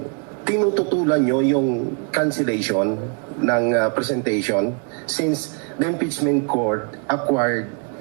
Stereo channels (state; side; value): quieter; left; 36.9 dB